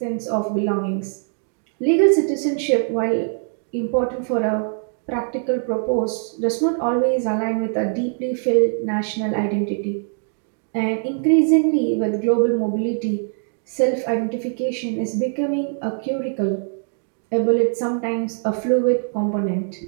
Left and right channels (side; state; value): left; silent; 64 dB below the other